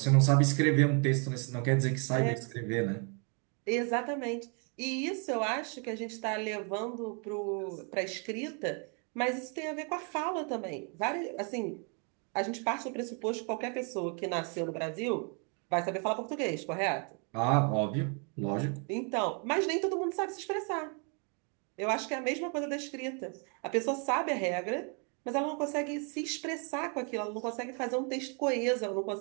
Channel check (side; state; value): left; quieter; 37.5 dB